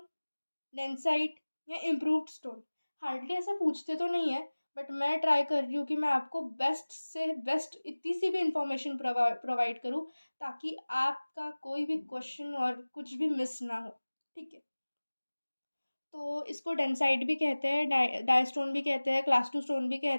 densite या इम्प्रूव्ड स्टोन। हार्डली ऐसा पूछते तो नहीं है, बट मैं ट्राई कर रही हूँ कि मैं आपको बेस्ट से बेस्ट इतनी सी भी इंफॉर्मेशन प्रोवाइड करूँ ताकि आपका कोई भी क्वेश्चन और कुछ भी मिस ना हो। ठीक है, तो इसको डेंसाइट भी कहते हैं, डाई स्टोन भी कहते हैं, क्लास 2 स्टोन भी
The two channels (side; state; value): both; inverted; correlation -1.00